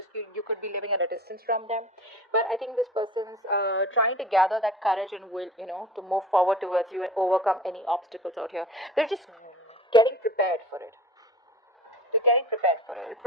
You could be living at a distance from them. But I think this person's trying to gather that courage and will, you know, to move forward towards you and overcome any obstacles out here. They're just getting prepared for it. They're getting prepared for it. It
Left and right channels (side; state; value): both; normal; correlation 0.39